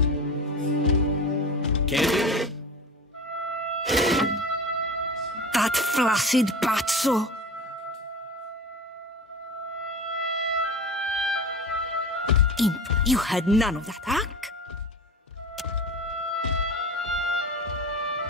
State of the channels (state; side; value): normal; both; correlation 0.32